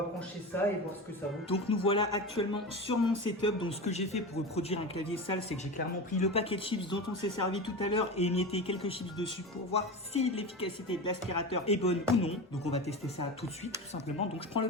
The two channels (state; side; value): normal; both; correlation 0.26